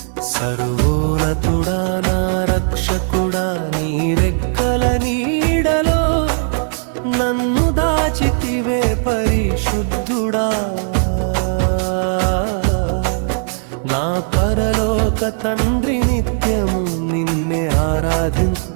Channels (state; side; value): silent; left; digital silence